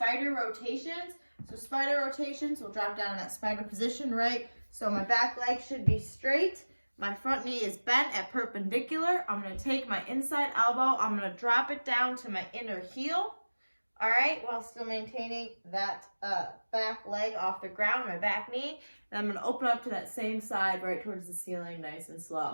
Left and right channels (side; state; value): both; inverted; correlation -1.00